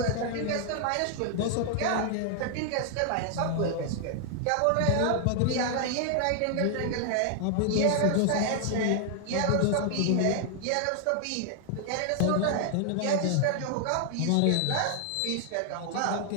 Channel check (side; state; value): both; different; correlation 0.00